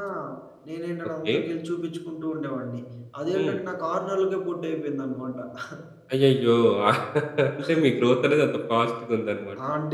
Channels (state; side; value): identical; both; correlation 1.00